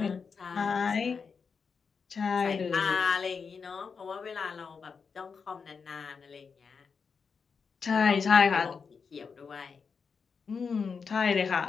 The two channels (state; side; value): quieter; right; 5.6 dB